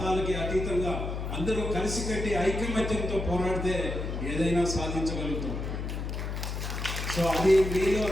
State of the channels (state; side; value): noise; left; hum, 4 dB below the sound